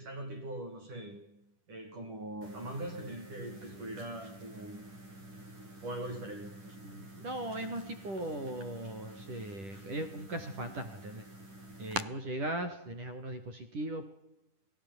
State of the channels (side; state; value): left; late; 10 ms